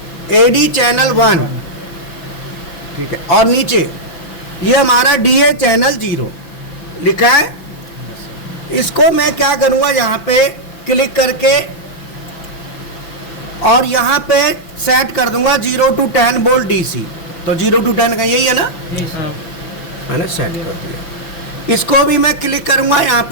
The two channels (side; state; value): right; late; 6.0 ms